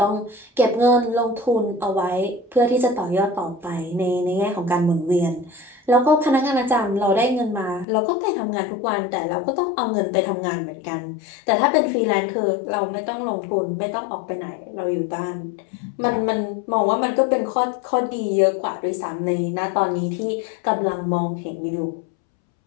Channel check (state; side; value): drops out; right; at 7.9 s